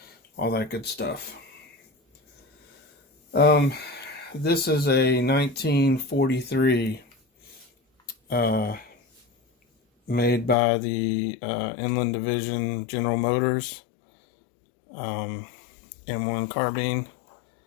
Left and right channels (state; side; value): drops out; right; at 10.6 s